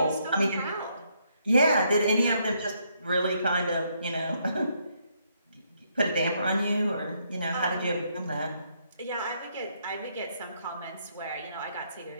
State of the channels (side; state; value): both; inverted; correlation -0.74